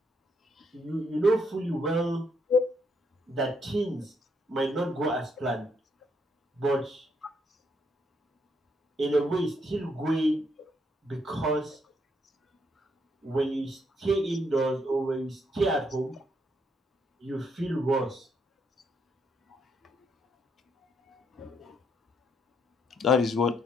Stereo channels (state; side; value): normal; both; correlation 0.74